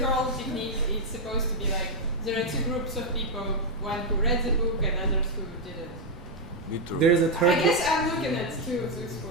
whole technique is supposed to be like there are two groups of people, one who read the book and others who didn't. There is a third. I guess I'm looking at two things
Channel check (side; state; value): right; noise; rumble, 17 dB below the sound